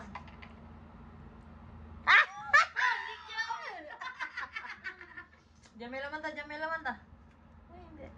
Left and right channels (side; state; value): both; identical; correlation 1.00